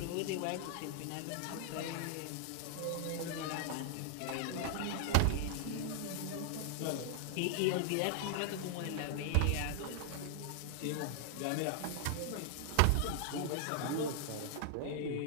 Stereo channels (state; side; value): different; both; correlation 0.00